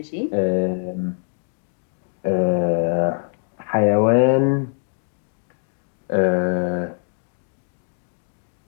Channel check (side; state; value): right; silent; 59 dB below the other